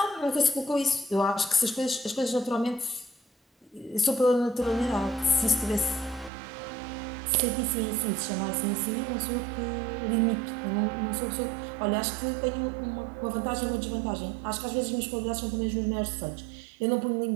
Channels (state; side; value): drops out; left; at 6.3 s